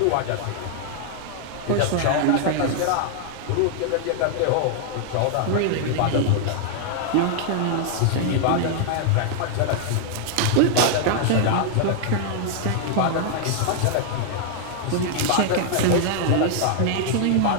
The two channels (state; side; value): different; both; correlation 0.00